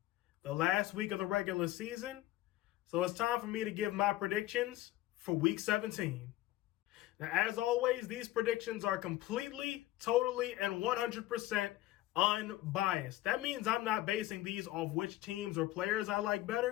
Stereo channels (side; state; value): right; quieter; 16.0 dB